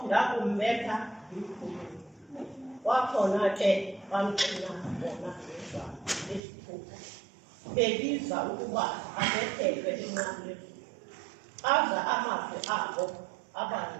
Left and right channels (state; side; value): drops out; left; at 6.4 s